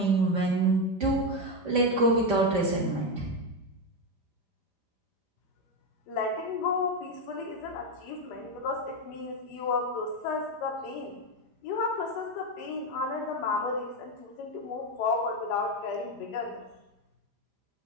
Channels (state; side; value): late; right; 5.0 ms